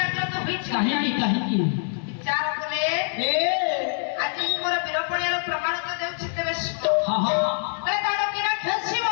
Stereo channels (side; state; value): right; silent; 58 dB below the other